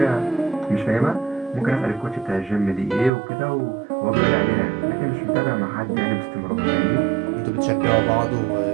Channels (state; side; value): drops out; left; at 3.1 s